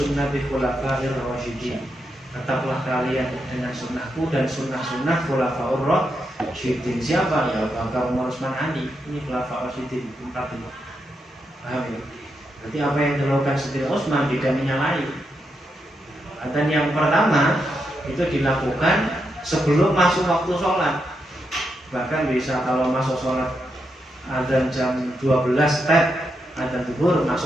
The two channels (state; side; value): normal; both; correlation 0.83